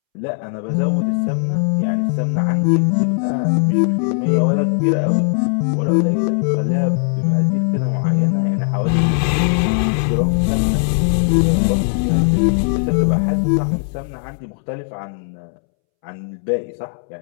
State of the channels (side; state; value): right; silent; 67 dB below the other